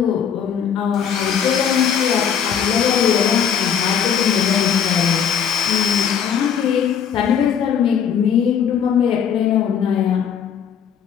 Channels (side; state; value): right; quieter; 8.0 dB